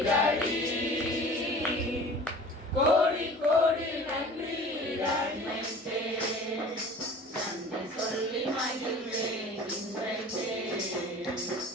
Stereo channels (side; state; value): both; normal; correlation 0.43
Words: டாடி, கோடி கோடி நன்றி டாடி. நன்றி சொல்லி மகிழ்வேன் இன்றைக்கே,